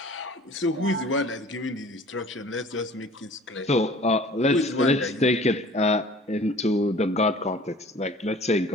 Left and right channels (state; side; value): normal; both; correlation 0.48